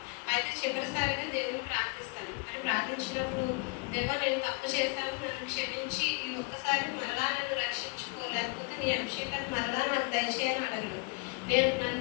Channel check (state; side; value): quieter; right; 31.6 dB